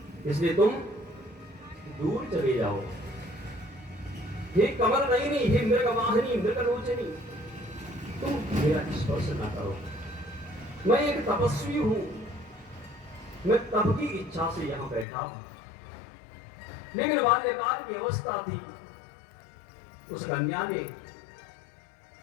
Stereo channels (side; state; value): right; drops out; at 15.1 s